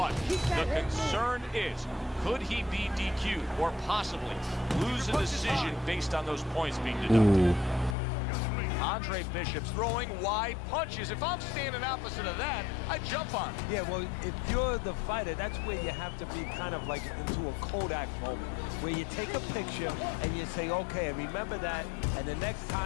the concern is, could he be DQ'd or possibly lose a decision based on those points being deducted? Ooh. Andre Bishop's throwing wide punches. If I'm standing opposite of that, I jump on it. Yeah, well, if you're the fighter, that's where you have to be kind of like into a Kodak moment, where you take a picture and you say, okay, remember that, and the next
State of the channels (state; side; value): drops out; right; at 8.0 s